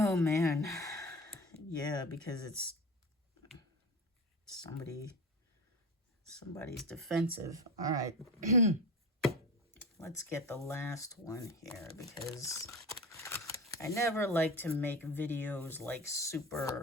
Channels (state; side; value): normal; both; correlation 0.29